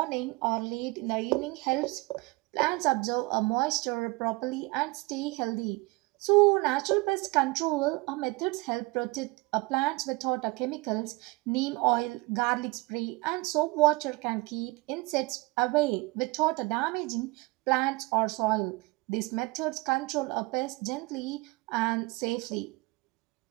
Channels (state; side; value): quieter; left; 24.8 dB